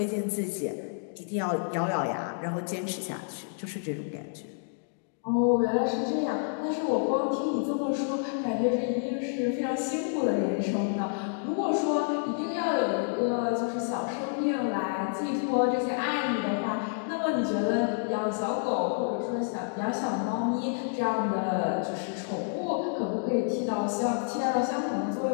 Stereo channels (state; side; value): silent; right; digital silence